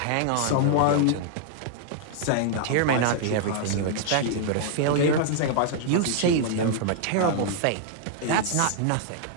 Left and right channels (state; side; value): different; both; correlation -0.01